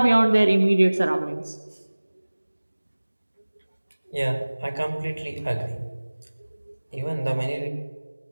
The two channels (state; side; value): inverted; both; correlation -1.00